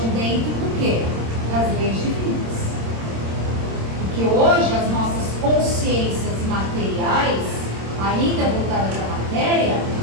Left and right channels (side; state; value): left; late; 26 ms